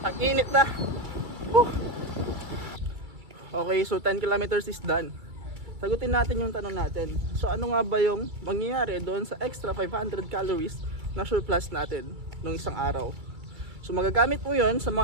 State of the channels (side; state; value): left; late; 2.3 ms